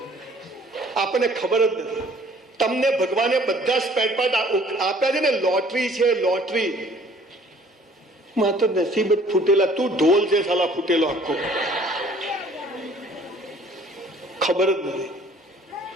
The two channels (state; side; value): normal; both; correlation 0.55